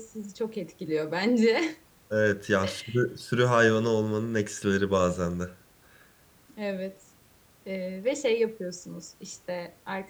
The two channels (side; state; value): both; identical; correlation 1.00